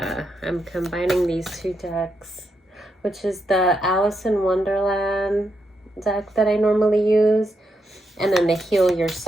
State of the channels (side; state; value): both; normal; correlation 0.82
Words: I'm combining these two decks, which is the Alice in Wonderland deck that I normally use, and then the Heal